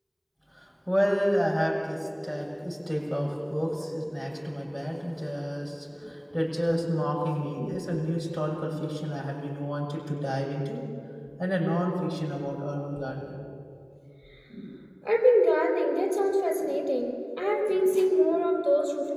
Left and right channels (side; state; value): both; identical; correlation 1.00